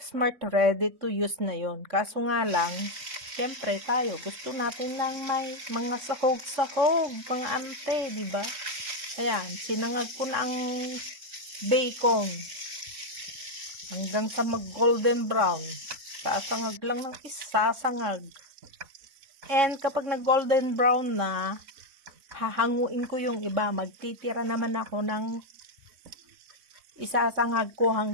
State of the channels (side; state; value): left; late; 3.6 ms